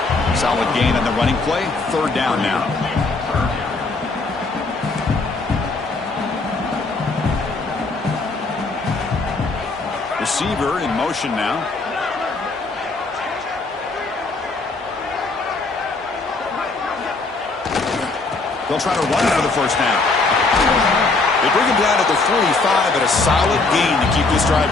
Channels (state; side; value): quieter; right; 3.6 dB